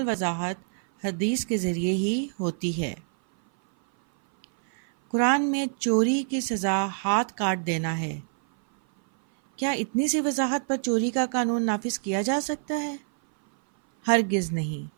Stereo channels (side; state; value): left; silent; 57 dB below the other